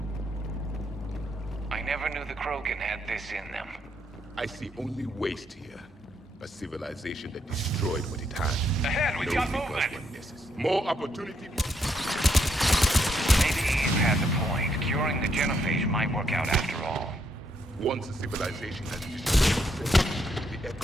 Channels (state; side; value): normal; both; correlation 0.75